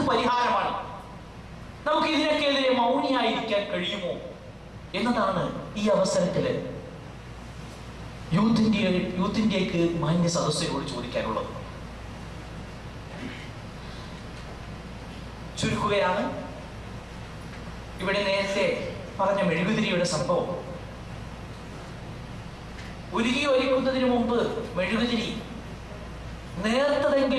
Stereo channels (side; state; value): both; identical; correlation 1.00